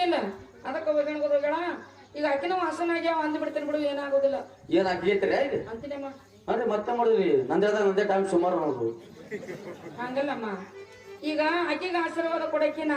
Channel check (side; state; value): both; identical; correlation 1.00